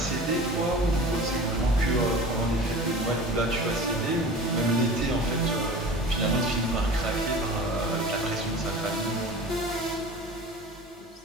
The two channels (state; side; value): normal; both; correlation 0.38